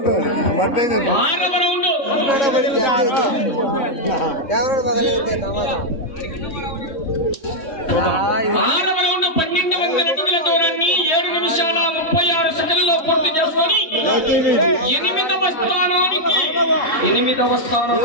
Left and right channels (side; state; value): right; late; 3.6 ms